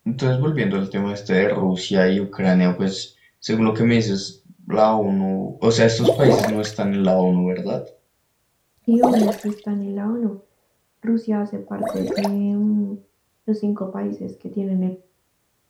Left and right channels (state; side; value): identical; both; correlation 1.00